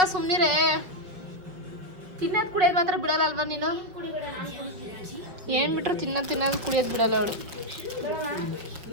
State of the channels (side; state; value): left; late; 5.1 ms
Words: ಸುಮ್ಮನಿರೇ. ತಿನ್ನೋದು ಕುಡಿಯೋದು ಮಾತ್ರ ಬಿಡಲ್ಲ ಅಲ್ವಾ ನೀನು? ಏನು ಬಿಟ್ರು ತಿನ್ನೋದು ಕುಡಿಯೋದು ಬಿಡಲ್ಲ ಅವಳು.